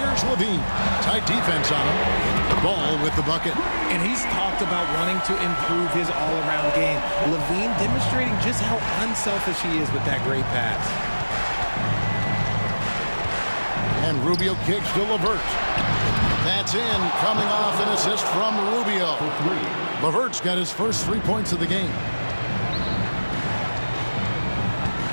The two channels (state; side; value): inverted; both; correlation -1.00